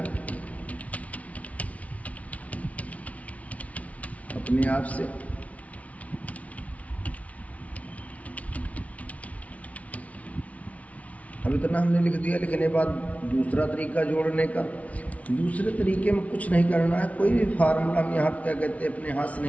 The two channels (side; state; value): right; late; 0.067 ms